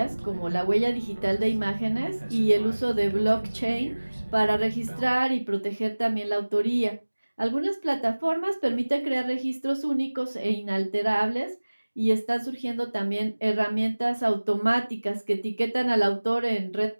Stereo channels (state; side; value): inverted; both; correlation -1.00